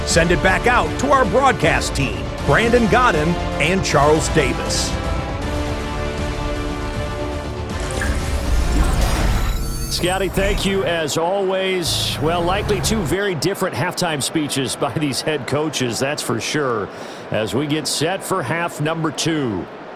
Send it back out to our broadcast team, Brandon Godden and Charles Davis. Scotty, thank you as always. Well, likely 2 very different halftime speeches by these head coaches, that's for sure, as we get set for half number 2.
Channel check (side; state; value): both; identical; correlation 1.00